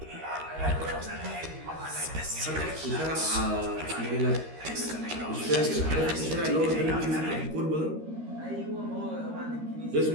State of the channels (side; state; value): left; late; 13 ms